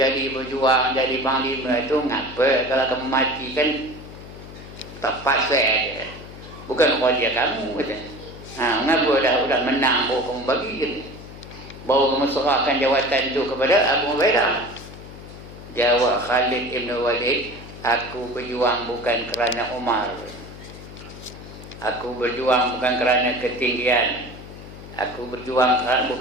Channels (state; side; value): noise; left; hum, 15 dB below the sound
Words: berjuang, jadi panglima itu ngapa? Kalau kamu mati kan tak pasal dia. Bukan kerja kamu kata. Ngapa dah menang baru kamu bagi je. Baru kamu serahkan jawatan itu kepada Abu Ubaidah. Jawab Khalid ibn Walid, aku berjuang bukan kerana Umar. Aku berjuang bukan kerana ketinggian. Aku berjuang